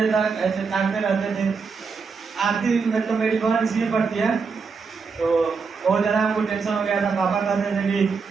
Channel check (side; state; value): left; quieter; 5.1 dB